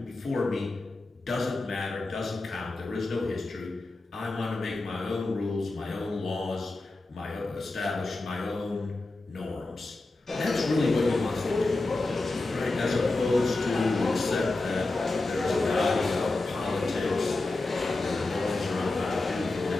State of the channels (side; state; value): right; quieter; 3.1 dB